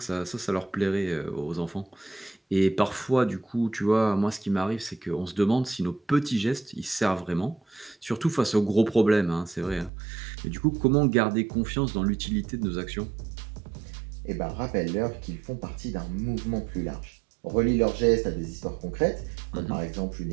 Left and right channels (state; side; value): drops out; left; at 9.9 s